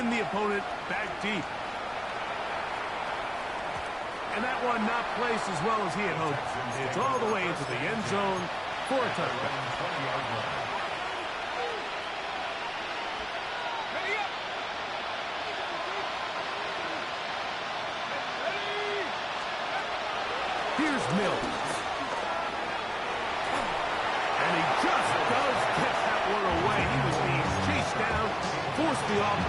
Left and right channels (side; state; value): both; identical; correlation 1.00